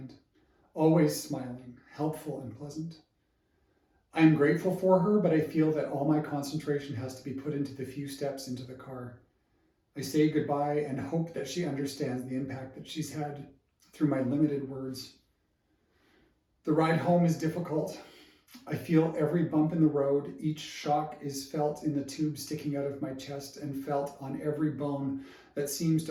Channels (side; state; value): both; identical; correlation 1.00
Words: always smiling, helpful and pleasant. I am grateful for her, but I feel that all my concentration has to be put into the few steps into the car. I say goodbye and hope that she understands the impact that she's had through my limited words. The ride home is difficult. I feel every bump in the road. Each shock is felt in the tube sticking out of my chest and felt on every bone that seems